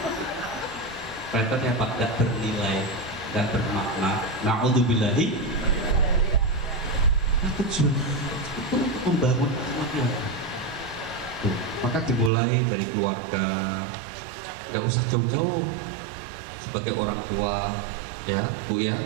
Pretnya apa? Nggak bernilai, nggak bermakna. Na'udzubillahi. Nah, tujuan itu untuk membangun akhlaknya. Maka dimulai dari keluarga. Gak usah jauh-jauh sebagai orang tua ya Bu ya,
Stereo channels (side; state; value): left; drops out; at 12.3 s